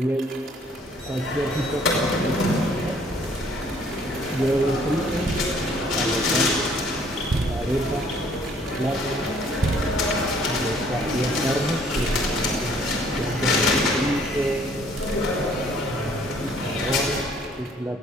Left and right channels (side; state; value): both; normal; correlation 0.60